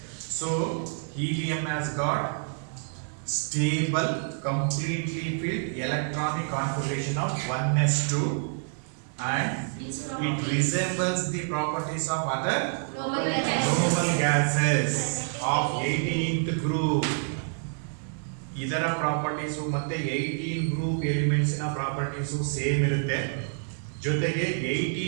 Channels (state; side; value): silent; left; 59 dB below the other